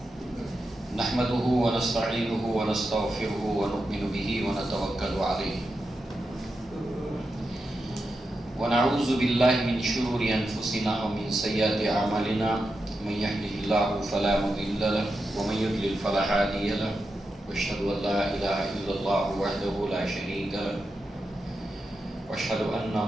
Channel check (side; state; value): both; normal; correlation 0.88